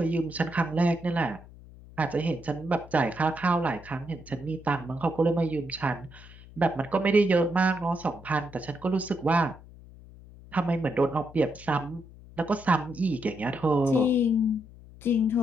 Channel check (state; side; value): noise; left; hum, 20 dB below the sound